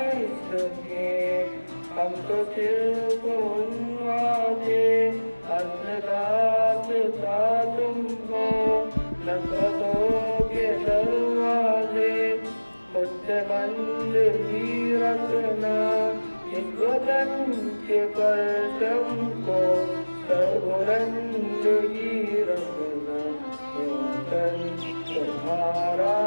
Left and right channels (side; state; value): both; inverted; correlation -1.00